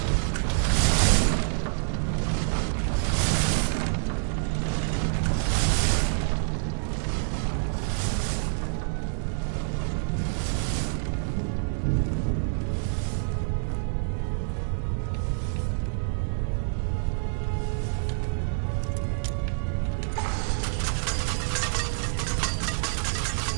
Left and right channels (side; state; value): left; silent; digital silence